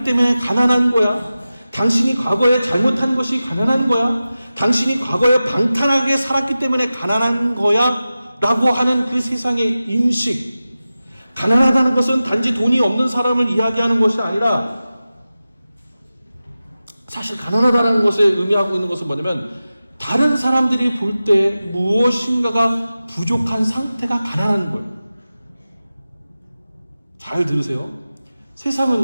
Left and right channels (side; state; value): both; inverted; correlation -0.95